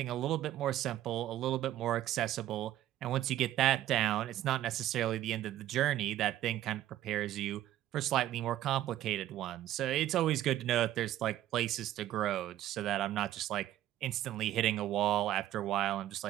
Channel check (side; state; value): left; quieter; 13.3 dB